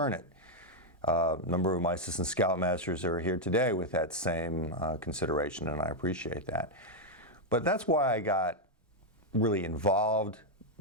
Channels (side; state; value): both; normal; correlation 0.00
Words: it. A number of my assistant scoutmasters are here today with that same consideration, and I appreciate that. But that's why I got really involved.